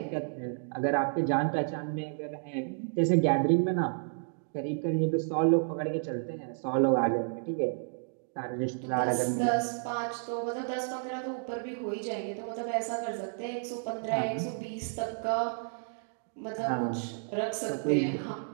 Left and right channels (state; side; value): silent; left; digital silence